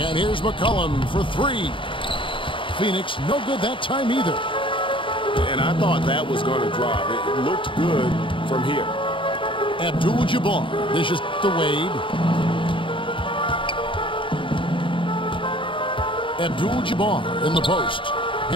here's McCollum for 3. Phoenix no good that time either. And I thought that was going to drop. It looked good from here. Abdul-Jabbar dishes to Wade. Abdul-Jabbar in the post.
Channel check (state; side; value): late; right; 0.25 ms